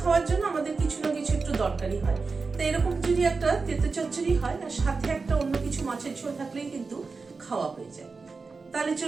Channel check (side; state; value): left; quieter; 4.4 dB